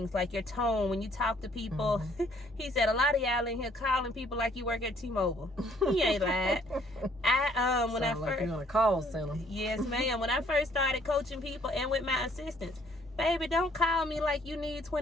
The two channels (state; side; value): normal; both; correlation 0.63